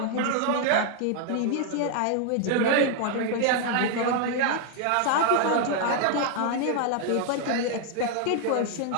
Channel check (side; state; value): both; different; correlation 0.00